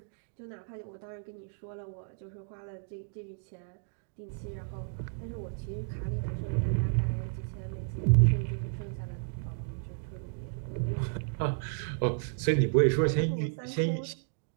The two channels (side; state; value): left; silent; digital silence